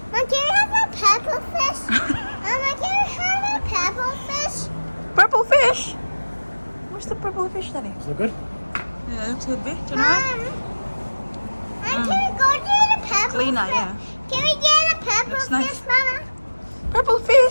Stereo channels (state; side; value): inverted; both; correlation -1.00